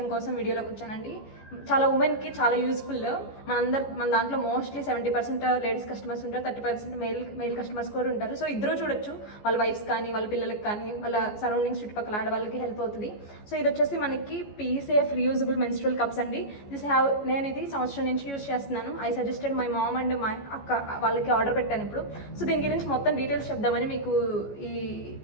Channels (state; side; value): late; right; 14 ms